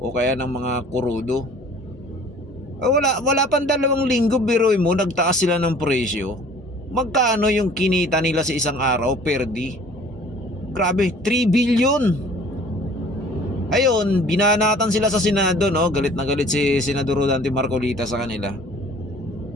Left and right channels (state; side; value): normal; both; correlation 0.50